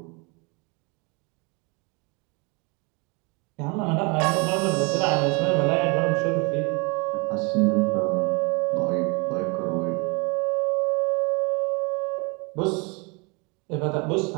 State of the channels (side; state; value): left; quieter; 30.3 dB